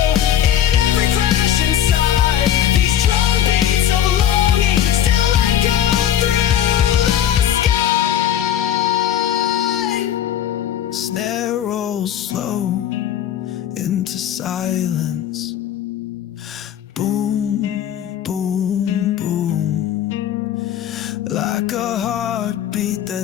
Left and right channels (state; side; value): quieter; right; 10.3 dB